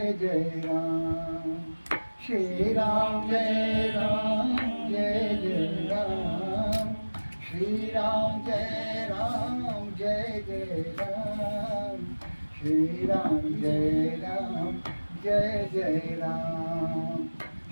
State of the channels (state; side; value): inverted; both; correlation -1.00